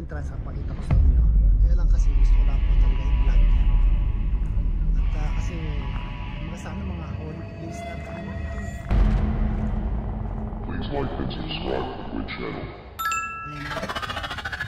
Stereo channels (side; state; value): both; identical; correlation 1.00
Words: pakita ko sa inyo. Kaya lang kasi gusto ko lang po talaga i-vlog. At kasi sana mga holy place na ano ito. Please like and subscribe to the channel.